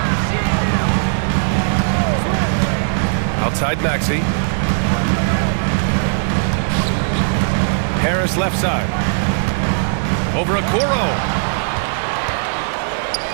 Outside Maxey. Harris left side. Over Okoro.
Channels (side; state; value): left; silent; 59 dB below the other